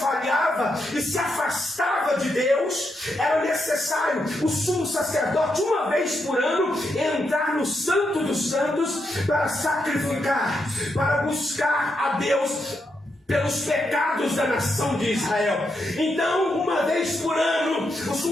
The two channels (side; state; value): both; normal; correlation 0.82